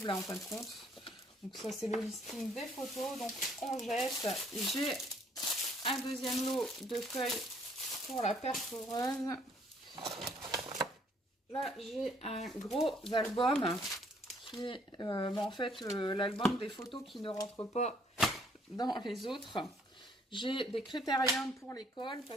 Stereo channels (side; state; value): both; normal; correlation 0.63